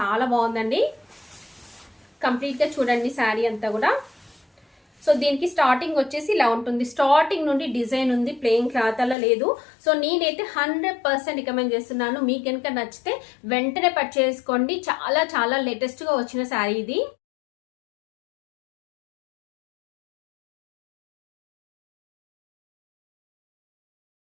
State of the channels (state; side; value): drops out; right; at 9.2 s